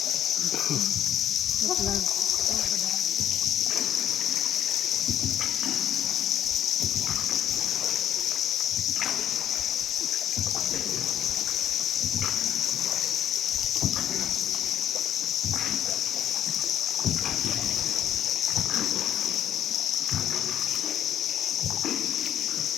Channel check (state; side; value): quieter; right; 10.6 dB